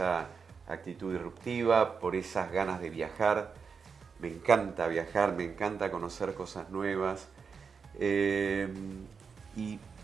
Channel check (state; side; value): quieter; left; 5.7 dB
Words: actitud disruptiva, por esas ganas de viajar. Me encanta viajar, me encanta conocer cosas nuevas, y